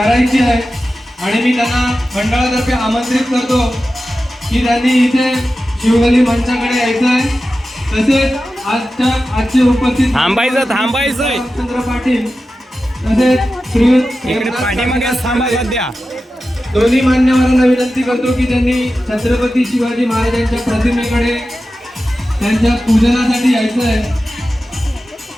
आहे आणि मी त्यांना मंडळातर्फे आमंत्रित करतो की त्यांनी इथे शिवगली मंचाकडे यायचं आहे. तसेच आजचे उपस्थित थांबायचं रामचंद्र पाटील तसेच श्रीयुत पाठीमागे थांबा सध्या. दोन्ही मान्यवरांना विनंती करतो की त्यांनी छत्रपती शिवाजी महाराजांच्या प्रतिमेकडे त्यांच्या पूजनासाठी यायचं आहे.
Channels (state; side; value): normal; both; correlation 0.93